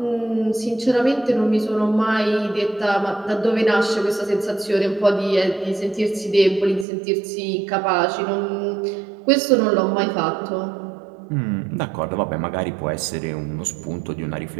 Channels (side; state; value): left; drops out; at 6.9 s